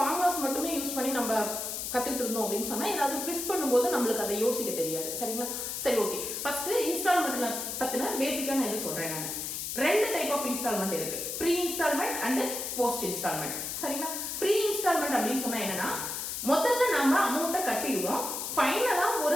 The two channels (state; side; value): noise; left; hiss, 4 dB below the sound